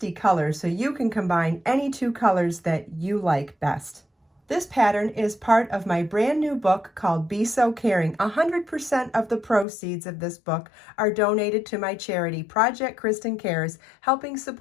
colors, so you can combine any 2 colors that you like best. This pattern is part of my brand new book called Be So Caring. 100% of the proceeds of this book are donated to my charity, Project Kristen Cares, helping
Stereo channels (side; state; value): right; drops out; at 9.7 s